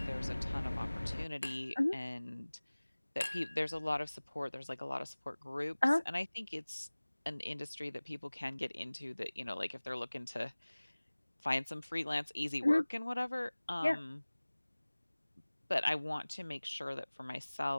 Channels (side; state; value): both; inverted; correlation -1.00